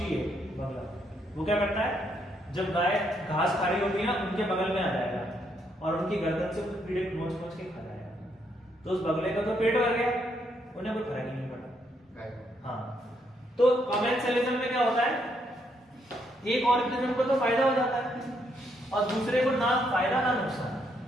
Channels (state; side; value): normal; both; correlation 0.75